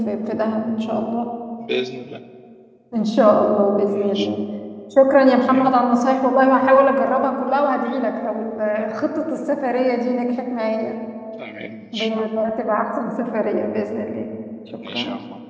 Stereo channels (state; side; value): identical; both; correlation 1.00